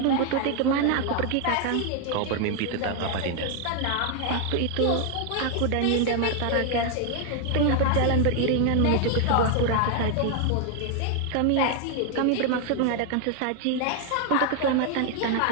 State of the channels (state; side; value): different; both; correlation 0.00